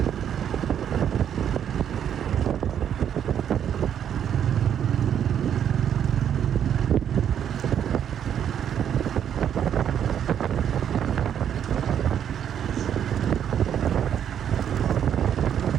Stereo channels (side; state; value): left; quieter; 9.2 dB